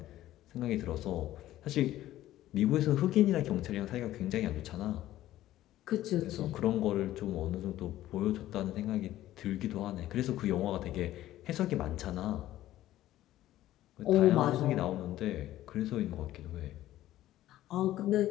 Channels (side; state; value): right; quieter; 14.2 dB